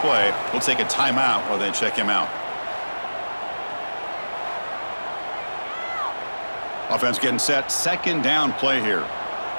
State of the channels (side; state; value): both; inverted; correlation -1.00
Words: We'll take a timeout while they check him out. Offense getting set. 2nd down play here.